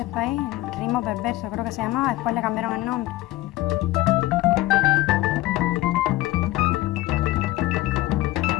país, Ritmo Perverso creo que se llamaba, después le cambiaron el nombre.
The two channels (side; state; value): right; quieter; 16.9 dB